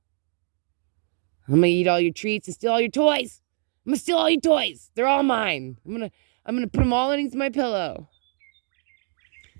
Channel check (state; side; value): silent; left; 62 dB below the other